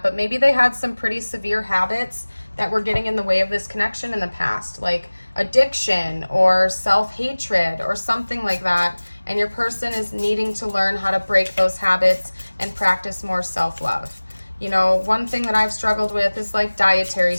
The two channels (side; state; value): both; inverted; correlation -1.00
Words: but maybe they had some pretty severe habits that were getting in the way of this connection in the past, like addiction or self-hatred or something like that. And your person is needing to learn how to break those habits and practice more self-love. You know, one thing that I've struggled with is like dietary